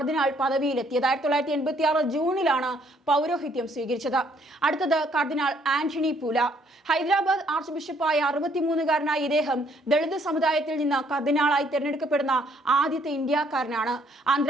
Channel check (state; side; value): normal; both; correlation 0.66